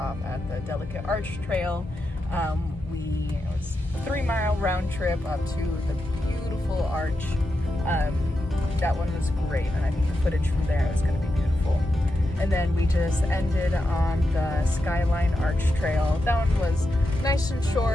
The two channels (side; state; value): both; normal; correlation 0.88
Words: at the Delicate Arch Trail. It was a 3-mile round trip up to the beautiful arch. That one was great, and I think the footage from there is going to be beautiful. And then we just ended on the Skyline Arch Trail. That one was nice and